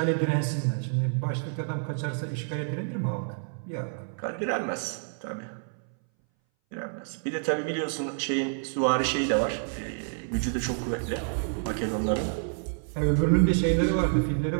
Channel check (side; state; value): left; silent; 59 dB below the other